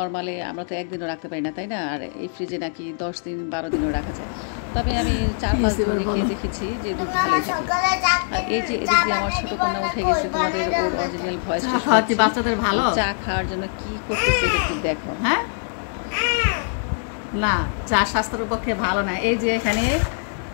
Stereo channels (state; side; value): silent; right; 63 dB below the other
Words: আমরা তো একদিনও রাখতে পারি না, তাই না? আর এই ফ্রিজে নাকি 10 দিন 12 দিনও রাখা যায়। তবে আমি 4-5 দিন রেখে দেখেছি যে দুধ ভালোই থাকে। আর এই যে এদিক দিয়ে আমার ছোটো কন্যা উঠে গেছে, তোমাদের ওর অরিজিনাল ভয়েসটা শোনাচ্ছি। বাচ্চাদের ভালো চা খাওয়ার জন্য কি করতেছে এটা একটু দেখো। হ্যাঁ, না চা স্বাস্থ্যের পক্ষে ভালো না। এই যে এখানে